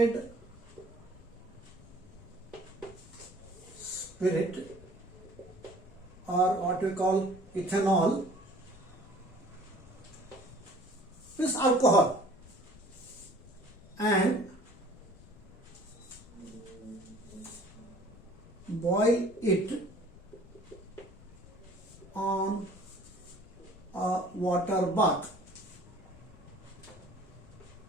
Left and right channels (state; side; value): noise; left; rumble, 21 dB below the sound